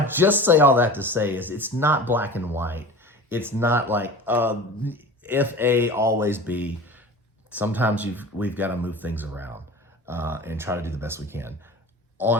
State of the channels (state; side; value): normal; both; correlation 0.37